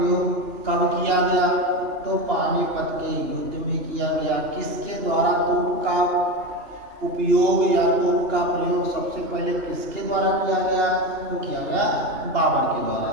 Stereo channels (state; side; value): late; left; 2.9 ms